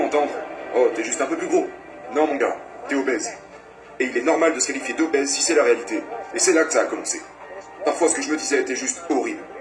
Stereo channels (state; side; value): identical; both; correlation 1.00